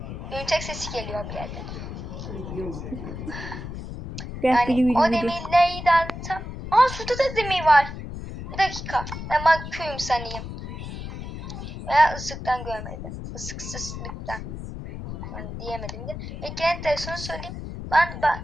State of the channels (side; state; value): left; noise; rumble, 8 dB below the sound